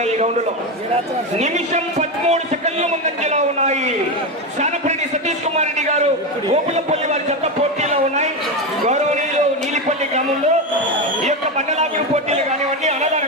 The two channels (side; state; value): both; normal; correlation 0.14